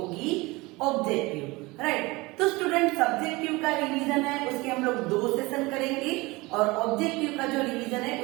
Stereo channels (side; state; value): left; quieter; 22.8 dB